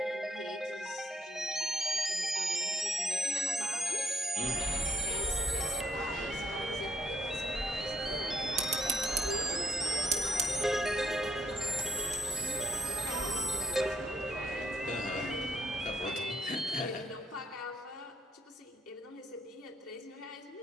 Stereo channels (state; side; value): normal; both; correlation 0.67